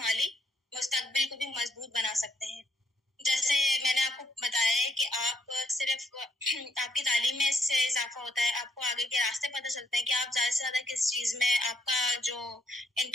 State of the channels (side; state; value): both; normal; correlation 0.72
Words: मुस्तकबिल को भी मजबूत बना सकते हैं। जैसे मैंने आपको बताया है कि आप सिर्फ आपकी तालीम में इससे इजाफा होता है, आपको आगे के रास्ते पता चलते हैं कि आप ज्यादा से ज्यादा किस चीज में आपका जो